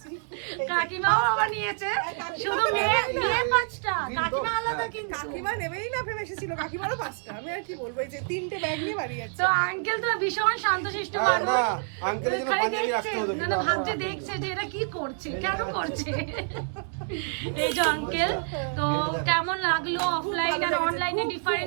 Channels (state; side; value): silent; left; 60 dB below the other